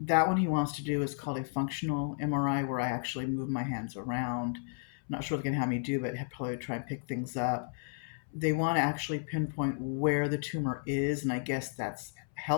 that one he wants to do is called a functional MRI, where I actually move my hands around. I'm not sure what they're going to have me do, but probably try and pick things up. They want to actually pinpoint where the tumor is, and I guess that's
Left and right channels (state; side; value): silent; right; 56 dB below the other